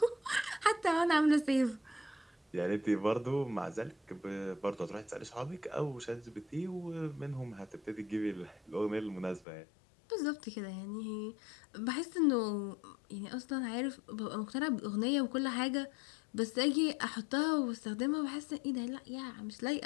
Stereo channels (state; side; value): drops out; right; at 9.5 s